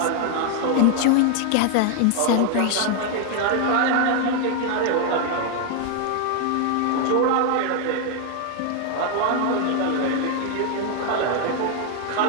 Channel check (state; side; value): different; both; correlation 0.00